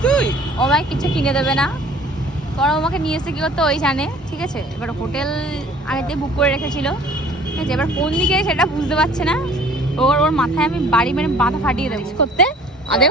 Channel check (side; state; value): both; normal; correlation 0.51